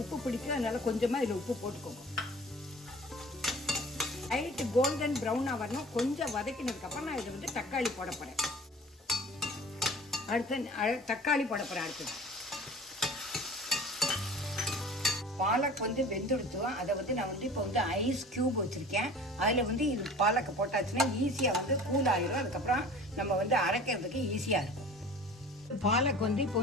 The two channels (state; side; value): normal; both; correlation 0.43